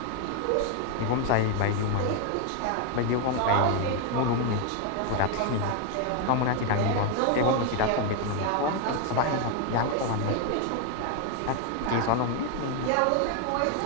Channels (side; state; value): both; different; correlation 0.01